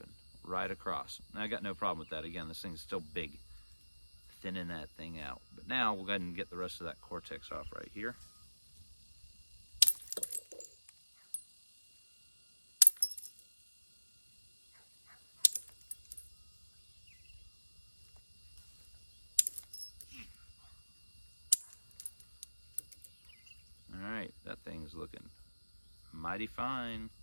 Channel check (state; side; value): inverted; both; correlation -1.00